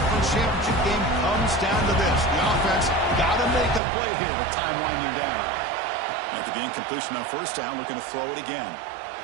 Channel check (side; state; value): left; drops out; at 3.8 s